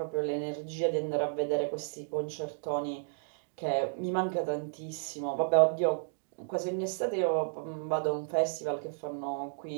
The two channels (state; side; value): silent; left; digital silence